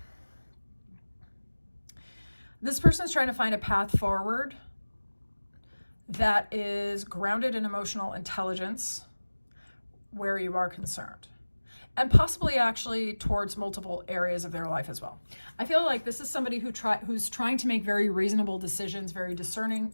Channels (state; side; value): inverted; both; correlation -1.00